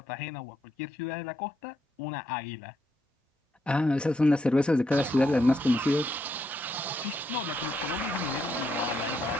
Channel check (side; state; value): both; normal; correlation 0.77